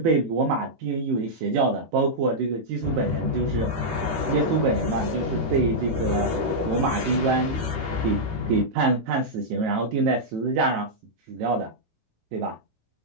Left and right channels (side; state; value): left; late; 18 ms